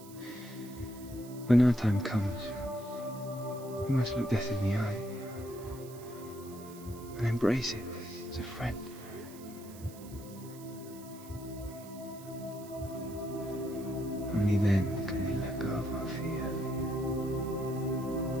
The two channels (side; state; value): right; noise; hiss, 19 dB below the sound